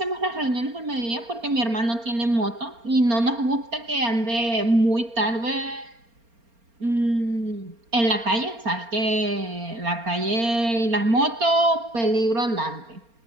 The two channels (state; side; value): late; left; 4.3 ms